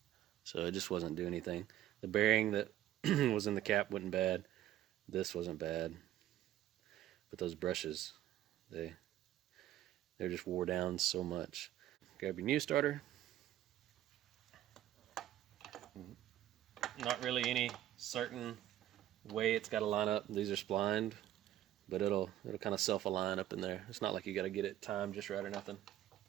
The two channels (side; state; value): left; quieter; 12.8 dB